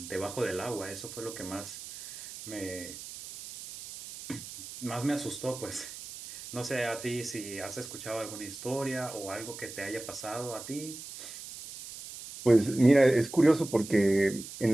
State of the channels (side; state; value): right; noise; hiss, 12 dB below the sound